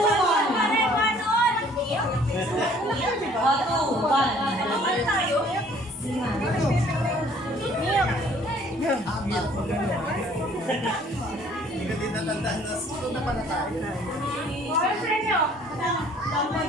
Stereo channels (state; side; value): normal; both; correlation 0.57